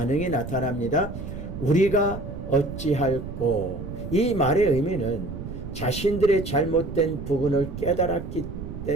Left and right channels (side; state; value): right; noise; rumble, 8 dB below the sound